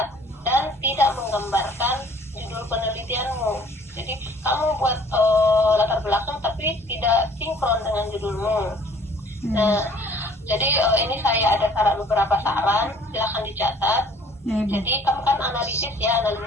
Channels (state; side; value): normal; both; correlation 0.54